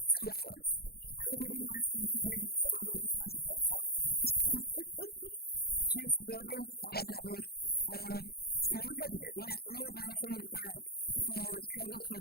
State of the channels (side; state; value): right; late; 0.45 ms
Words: 2 minutes. It'll be less than 2 minutes unless Matt takes longer. Teresa Bowlby, I have not moved. Matt, you had mentioned that the cargo